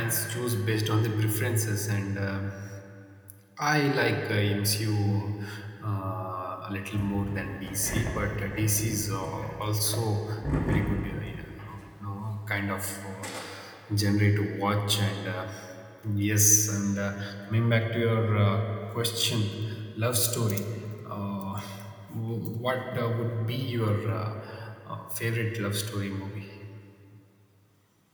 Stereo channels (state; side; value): identical; both; correlation 1.00